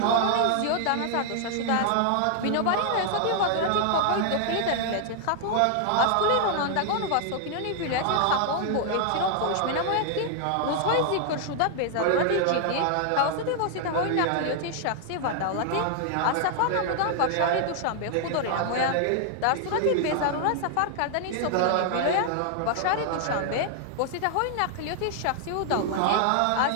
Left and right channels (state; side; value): different; both; correlation 0.00